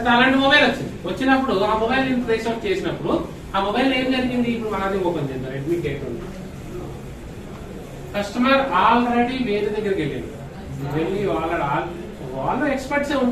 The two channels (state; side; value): identical; both; correlation 1.00